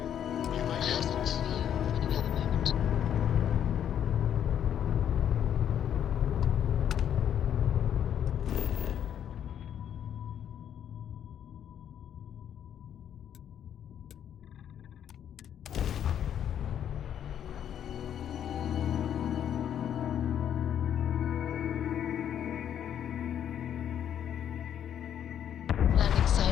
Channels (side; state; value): right; quieter; 9.6 dB